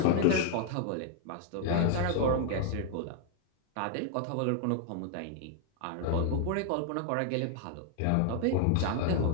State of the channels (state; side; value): different; both; correlation 0.00